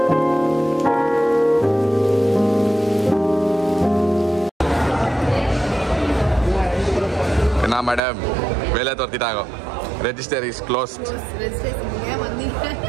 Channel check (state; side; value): drops out; left; at 8.0 s